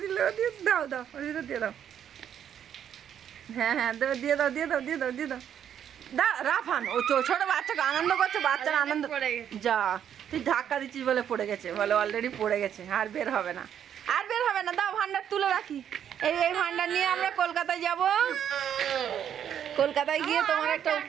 দাও ওর ভিতর দিয়ে দাও। হ্যাঁ, দিয়ে দাও। রাফান, ও ছোট বাচ্চাকে আনন্দ করছে, বাচ্চার আনন্দ। যা, তুই ধাক্কা দিচ্ছিস বলে পড়ে গেছে, বলে অলরেডি পড়ে গেছে, আর বের হবে না। দাও, ভান্ডার তুলে রাখি। এই ভান্ডার নিয়ে আমরা কলকাতায় যাব। কলকাতায় গিয়ে তোমার একটা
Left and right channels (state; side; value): quieter; left; 9.3 dB